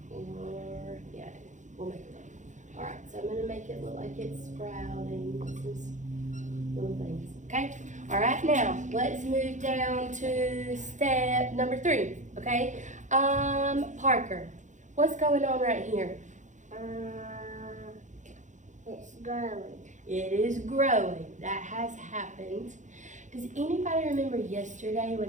Or yeah, we'll make it look. All right, so I'm gonna make it look like it's sprouting. Little things. Okay? All right, now let's move down to step number 3. Okay? Parker, what's going on right here? It's growing. It is growing. That has happened. Does anybody remember yesterday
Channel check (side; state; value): left; late; 0.35 ms